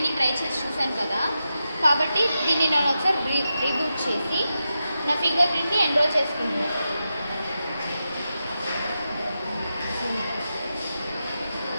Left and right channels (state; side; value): inverted; both; correlation -0.89